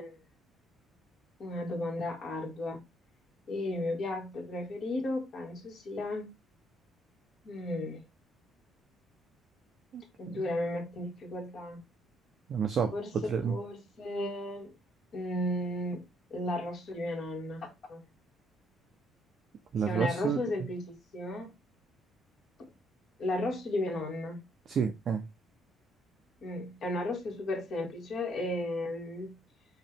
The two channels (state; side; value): normal; both; correlation 0.70